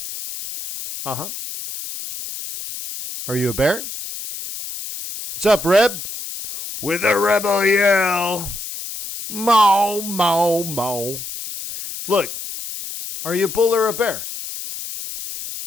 Uh-huh. Are you a bear? What's up, Reb? With a rebel yell. Mow, mow, mow. Look, are you a bull or a bear?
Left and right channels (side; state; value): left; noise; hiss, 9 dB below the sound